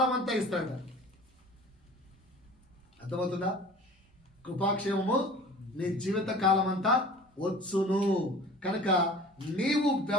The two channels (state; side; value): normal; both; correlation 0.43